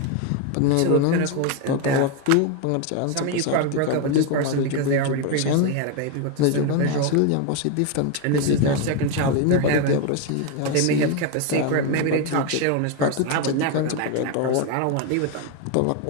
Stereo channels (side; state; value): both; different; correlation 0.02